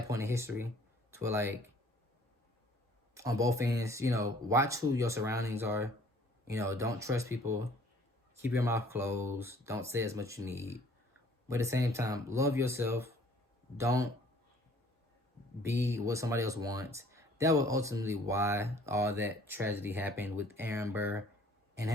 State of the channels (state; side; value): normal; both; correlation 0.56